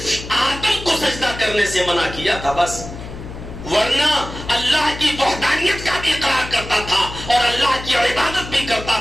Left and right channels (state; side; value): noise; left; hum, 11 dB below the sound